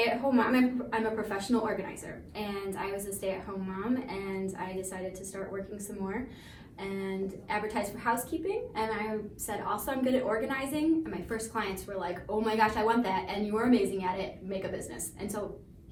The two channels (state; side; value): identical; both; correlation 1.00